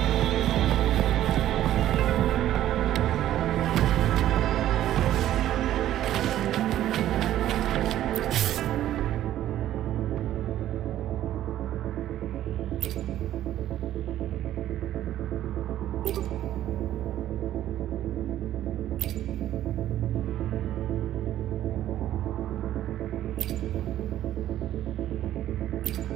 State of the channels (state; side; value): quieter; left; 12.7 dB